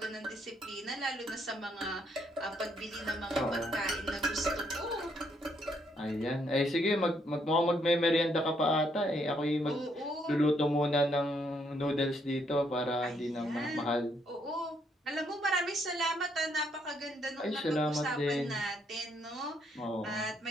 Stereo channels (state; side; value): normal; both; correlation 0.72